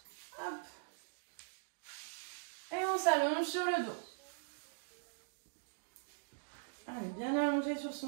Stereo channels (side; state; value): left; silent; digital silence